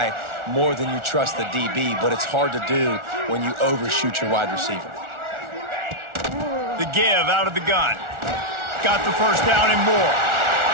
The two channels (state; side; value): late; left; 1.4 ms